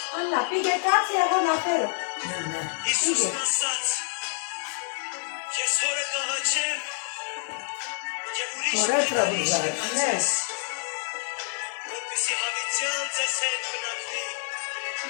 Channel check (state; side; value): silent; right; 60 dB below the other